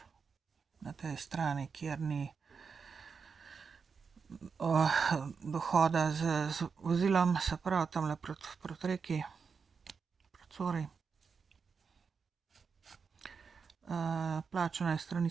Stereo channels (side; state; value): left; quieter; 5.6 dB